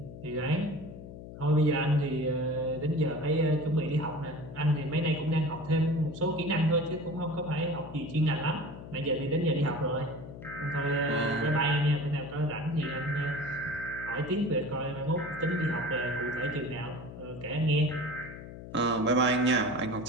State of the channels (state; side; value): noise; left; hum, 13 dB below the sound